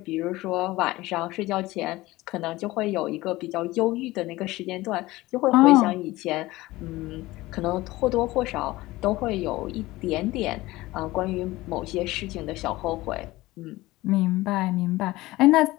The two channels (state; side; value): quieter; right; 18.8 dB